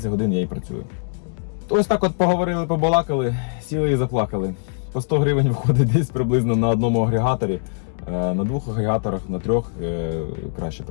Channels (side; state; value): right; silent; digital silence